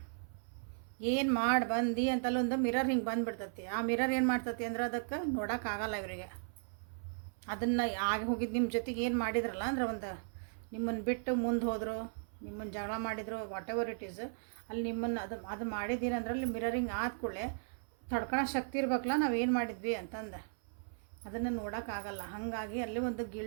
ಏನು ಮಾಡಿ ಬಂದು ಅಂತಲ್ಲೊಂದು ಮಿರರ್ ಹಿಂಗೆ ಬಂದುಬಿಡ್ತತಿ. ಆ ಮಿರರ್ ಏನು ಮಾಡ್ತತಿ ಅಂದ್ರೆ ಅದಕ್ಕೆ ನೋಡೋಕ್ಕಾಗಲ್ಲ ಇವರಿಗೆ. ಅದನ್ನು ಆಗಿ ಹೋಗಿದ್ದು ನಿಮ್ಮ ಜೊತೆಗೆ ಏನು ಮಾಡಿದ್ರಲ್ಲ ಅಂದ್ರೆ, ಒಂದು ನಿಮ್ಮನ್ನು ಬಿಟ್ಟು ಮುಂದೆ ಹೋದರು, ನಿಮ್ಮನ್ನು ಜಗಳ ಮಾಡಿದ್ರು, ವಾಟ್ ಎವರ್ ಇಟ್ ಈಸ್, ಅಲ್ಲಿ ನಿಮ್ಮನ್ನು ಅದು ಮಾಡಿದ್ದೀರಂದ್ರೆ ಅಲ್ಲಿ ಮಿರರಿಂಗ್ ಆದ ಕೂಡಲೇ ತಡ್ಕೊಳ್ಳೋ ಶಕ್ತಿ ಇರ್ಬೇಕಲ್ಲ ನಾವೇನು ಮಾಡಿದ್ವಿ ಅಂತಂದು, ಅದನ್ನು ನೋಡೋಕ್ಕಾಗಲ್ಲ. ಹಾಗಾಗಿ ಅಲ್ಲಿ ಒಂದು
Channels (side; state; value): left; silent; 54 dB below the other